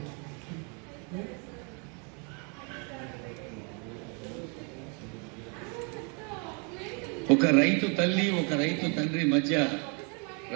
ఒక రైతు తల్లి, ఒక రైతు తండ్రి మధ్య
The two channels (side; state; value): left; quieter; 35.7 dB